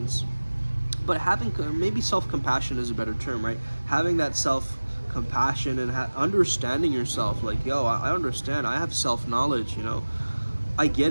But having, maybe self-compassion is a better term, right? Having that self-compassion and understanding yourself, like, yo, I understand, I have self-knowledge, you know, I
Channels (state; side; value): inverted; both; correlation -1.00